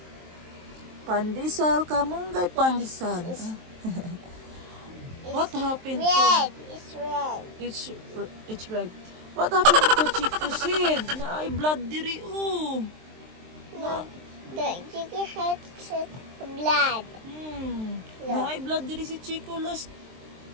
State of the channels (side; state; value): left; late; 23 ms